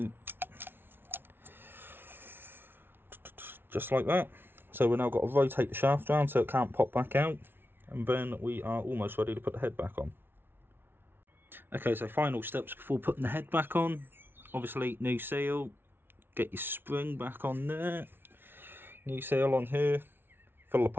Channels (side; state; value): left; late; 0.11 ms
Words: just like that. So we've now got to rotate the shaft around so it can't pop back out, and then we are almost ready to put the head back on. Okay, so final steps before putting the head back on. Obviously, new seal, get your spring back on there, new seal on here, fill the